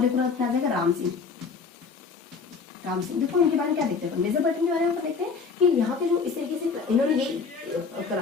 एक आ जाएगा राम सिंह। देखो इनके बारे में क्या देखते हैं अपन, मेजर बर्टन के बारे में अपन देखते हैं कि यहाँ के जो इस तरीके से इन्होंने ये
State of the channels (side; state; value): right; quieter; 5.1 dB